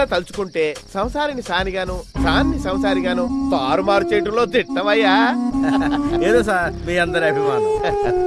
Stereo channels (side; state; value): both; identical; correlation 1.00